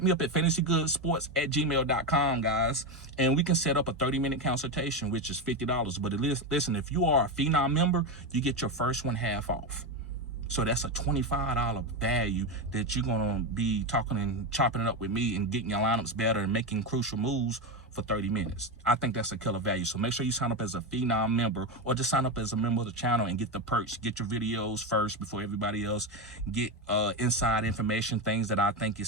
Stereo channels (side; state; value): both; normal; correlation 0.13